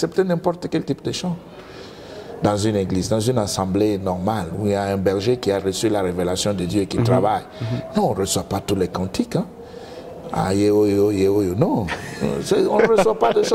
n'importe quel type de chant. Dans une église, dans une assemblée normale, où il y a un berger qui a reçu la révélation de Dieu et qui travaille. Non, on ne reçoit pas tous les cantiques. Hein. Ah, non, on ne reçoit pas de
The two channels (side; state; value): both; identical; correlation 1.00